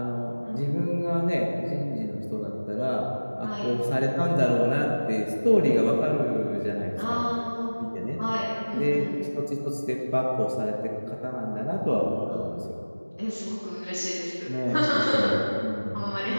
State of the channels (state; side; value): inverted; both; correlation -1.00